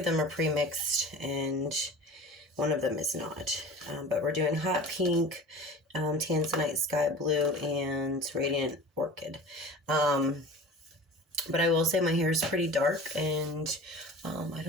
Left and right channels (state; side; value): normal; both; correlation 0.38